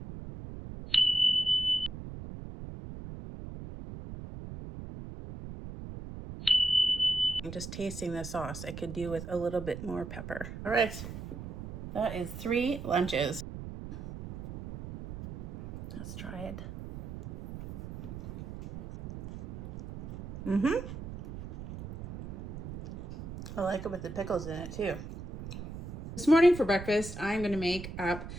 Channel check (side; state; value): right; noise; rumble, 10 dB below the sound